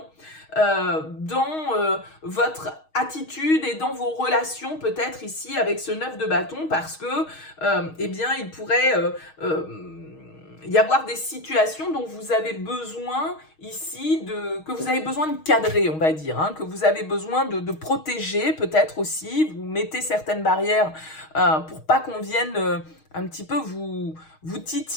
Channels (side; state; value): right; late; 6.4 ms